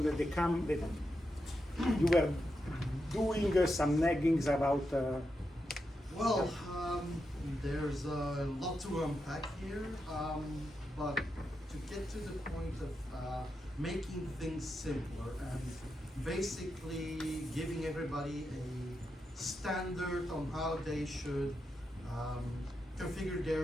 that you were doing some naggings about. Well, there's a lot to unpack here, but to get to the point of making things simpler and basically giving everybody a standard on how they should configure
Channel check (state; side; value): normal; both; correlation 0.86